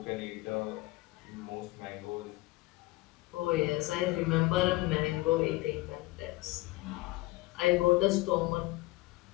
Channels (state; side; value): quieter; right; 19.8 dB